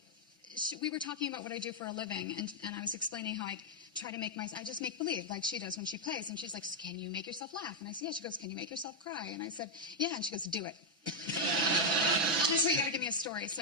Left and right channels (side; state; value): both; normal; correlation -0.02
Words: we were talking about what I do for a living, and I was explaining how I try to I just make believe, like she does when she plays. And she's like, "Can you make yourself laugh?" And I said, "Yeah." She goes, "Can you make yourself cry?" And I said, "Yeah." And she goes, "Do it." I said, "You got to give me a story."